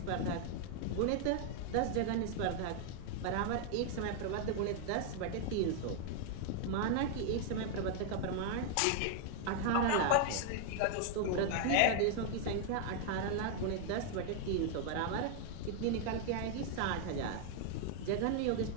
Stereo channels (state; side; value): different; both; correlation 0.00